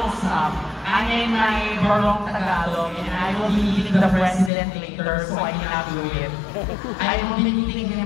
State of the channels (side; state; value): right; drops out; at 4.5 s